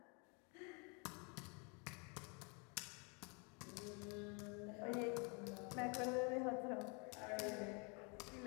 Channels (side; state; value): right; quieter; 34.2 dB